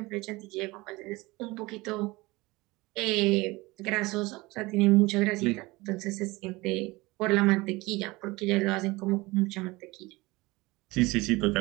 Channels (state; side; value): quieter; left; 22.1 dB